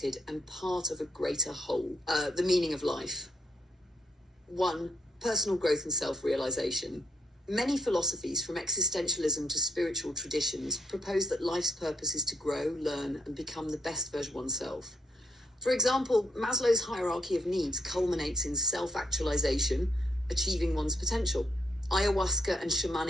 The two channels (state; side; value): normal; both; correlation 0.71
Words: and part of a greater whole. The meaning of life. 1. Personal growth and self-realization. Many philosophies, from existentialism to spiritual traditions, propose that life's purpose is to grow, learn, and become the best version of oneself. For example, Maslow's hierarchy of needs culminates in self-actualization, achieving one's potential. Ayahuasca and